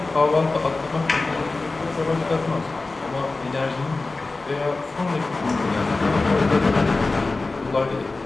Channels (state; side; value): quieter; right; 3.5 dB